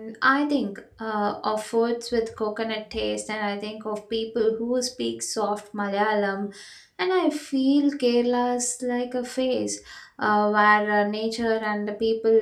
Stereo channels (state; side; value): identical; both; correlation 1.00